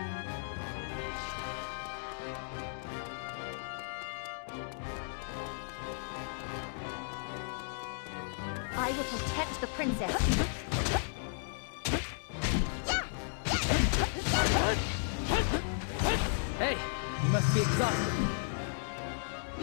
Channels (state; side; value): silent; right; digital silence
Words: I will protect the princess. Hey, you must be exhausted.